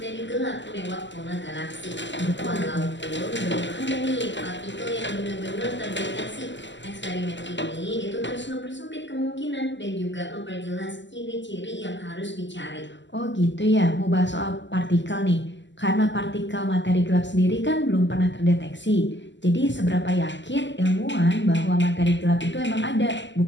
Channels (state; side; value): late; right; 0.53 ms